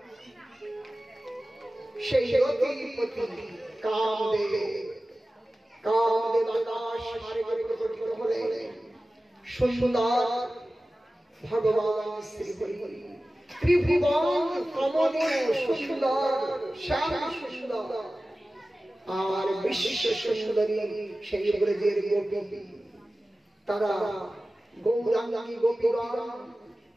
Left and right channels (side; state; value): both; normal; correlation 0.96